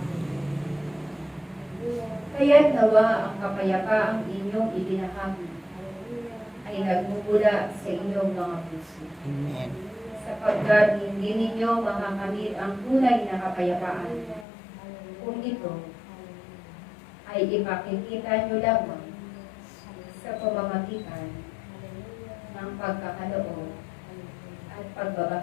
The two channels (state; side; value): drops out; right; at 14.5 s